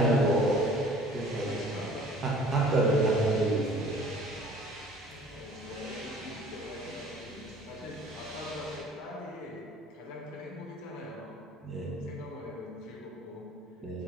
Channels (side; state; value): both; normal; correlation 0.50